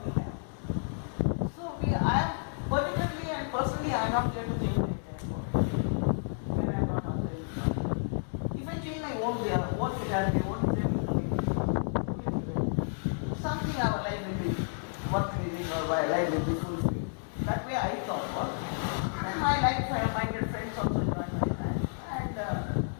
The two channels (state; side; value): silent; right; digital silence